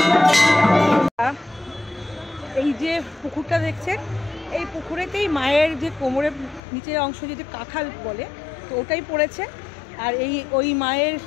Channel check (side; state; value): right; drops out; at 6.6 s